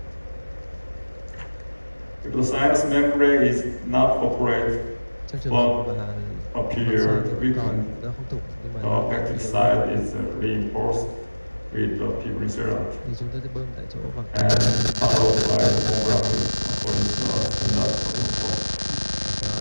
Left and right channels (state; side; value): inverted; both; correlation -1.00